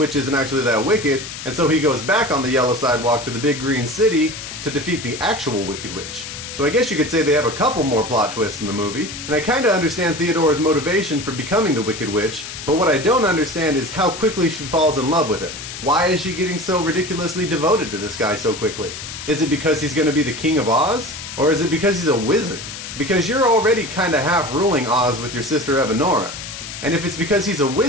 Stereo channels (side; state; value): left; noise; hiss, 10 dB below the sound